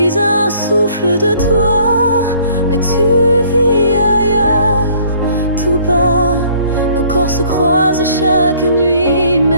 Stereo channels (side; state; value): both; inverted; correlation -0.58